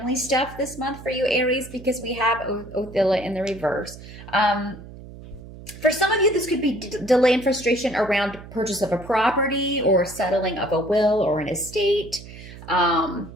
stuff this month for you, Aries, because we have Othilla in the reverse. For some of you, this could be delay and frustration around purchase of a property or settling of a will or an estate.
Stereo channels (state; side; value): noise; right; hum, 16 dB below the sound